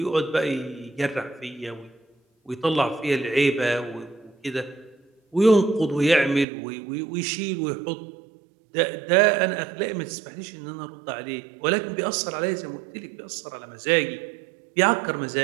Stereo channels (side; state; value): left; drops out; at 6.5 s